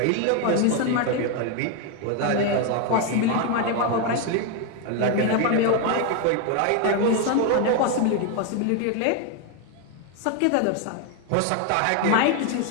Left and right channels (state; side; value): different; both; correlation 0.01